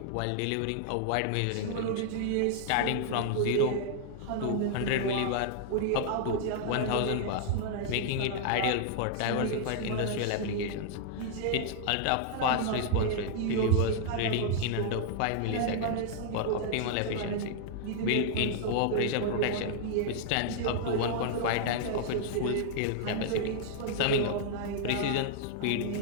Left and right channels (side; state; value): both; different; correlation -0.01